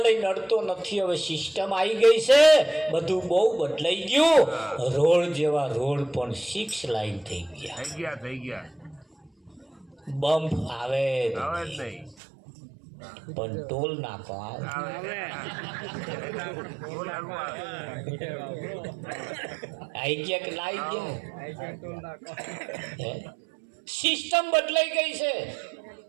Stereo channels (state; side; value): drops out; left; at 12.2 s